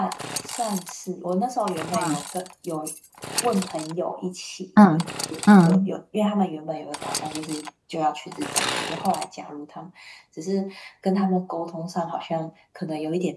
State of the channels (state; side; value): identical; both; correlation 1.00